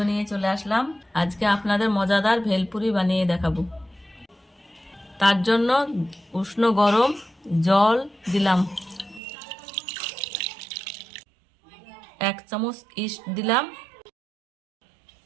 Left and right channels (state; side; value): drops out; left; at 9.2 s